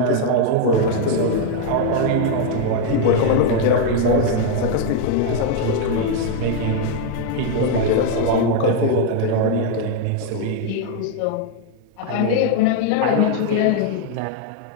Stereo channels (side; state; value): both; different; correlation 0.00